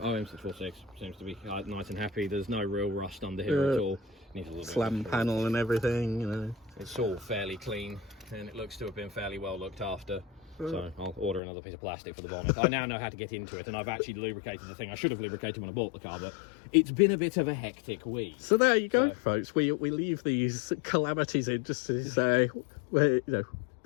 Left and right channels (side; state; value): right; drops out; at 11.4 s